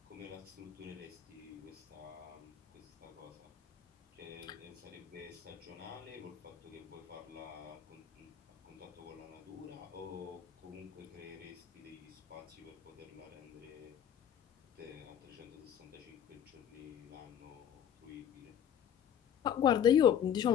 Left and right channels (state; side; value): quieter; right; 9.2 dB